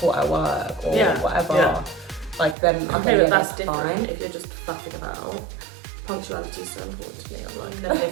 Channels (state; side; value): drops out; left; at 2.6 s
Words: at work or whatever. Yeah. Like then, okay, yeah, that's different. Fine. If you're just faffing about. Punctuality is so important to me. I'm like, never hear